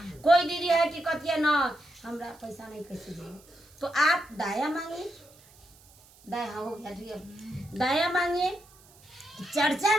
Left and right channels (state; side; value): noise; right; hiss, 26 dB below the sound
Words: कोई दीदी है कि कहती है ना हमरा पैसा नहीं कैसे देंगे, तो आप दया मांगिए। दया हो गया ठीक है, दया मांगिए। चर्चा